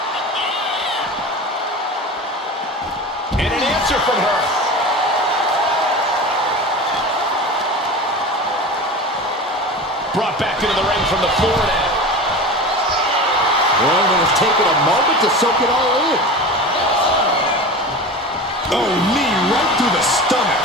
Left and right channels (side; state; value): both; normal; correlation 0.31